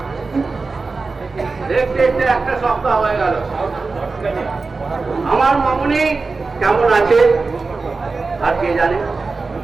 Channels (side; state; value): left; quieter; 4.0 dB